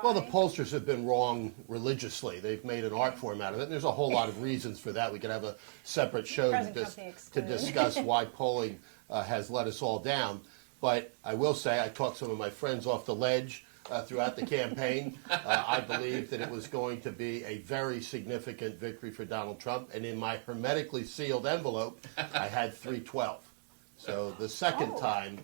the pollsters have been wrong religiously. They've made an art form out of it. And there's a whole lot of reasons for that. We could have a separate show to discuss why polling has let us all down. But I will say, I talked some of my friends off the ledge throughout the campaign. I believed that it was going to be a very significant victory for Donald Trump. And in my hermetically sealed envelope, I had 312. So the second time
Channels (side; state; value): left; silent; 54 dB below the other